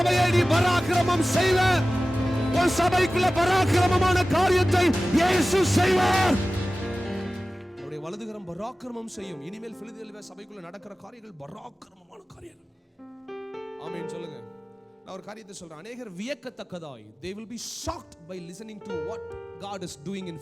நீ பராக்கிரமம் செய்வ. உன் சபைக்குள்ள பராக்கிரமமான காரியத்தை இயேசு செய்வார். அவருடைய வலதுகரம் பராக்கிரமம் செய்யும். இனிமேல் பிலதெல்பியா சபைக்குள்ள நடக்கிற காரியங்கள் பராக்கிரமமான காரியங்கள். ஆமென் சொல்லுங்க. நான் ஒரு காரியத்தை சொல்றேன். அநேகர் வியக்கத்தக்கதாய் they will be shocked by listening to what God is doing in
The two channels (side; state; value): both; normal; correlation 0.96